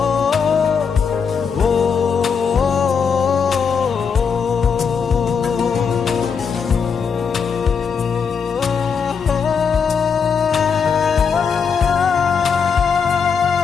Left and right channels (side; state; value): right; quieter; 6.1 dB